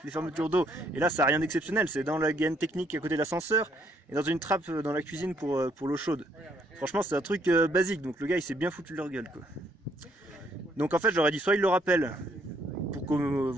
fermetures d'eau. Et là ça n'a rien d'exceptionnel, c'est dans la gaine technique à côté de l'ascenseur et dans une trappe dans la cuisine pour l'eau chaude. Franchement c'est un truc basique, donc le gars il s'est bien foutu de leur gueule quoi. Donc en fait je leur ai dit soit il le rappelle, pour que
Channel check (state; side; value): normal; both; correlation 0.69